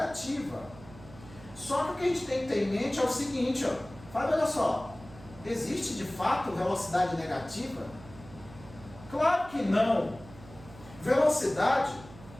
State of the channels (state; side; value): noise; right; hum, 18 dB below the sound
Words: Só que o que a gente tem que ter em mente é o seguinte, ó, Fábio, olha só, existe de fato velocidade negativa? Claro que não. Velocidade